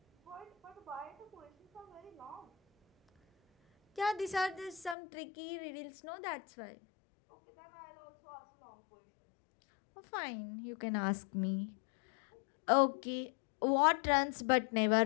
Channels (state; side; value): drops out; right; at 5.0 s